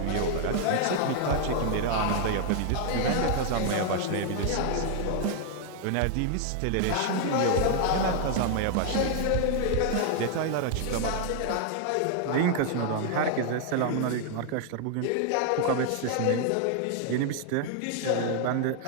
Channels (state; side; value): different; both; correlation 0.00